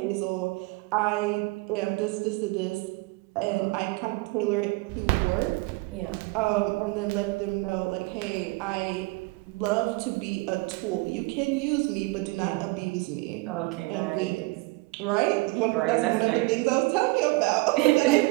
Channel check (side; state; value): left; quieter; 24.6 dB